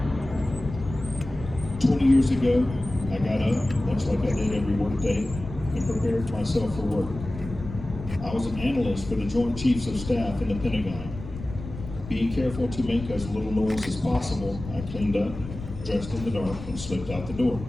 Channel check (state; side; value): noise; left; rumble, 11 dB below the sound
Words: 20 years ago, I got up, much like I did every workday, and prepared myself for work. I was an analyst for the Joint Chiefs of Staff in the Pentagon. Being careful to make as little noise as possible, I cleaned up, dressed in the dark, and slipped out the door.